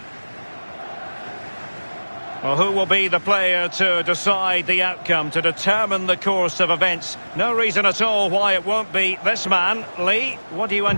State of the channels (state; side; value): inverted; both; correlation -1.00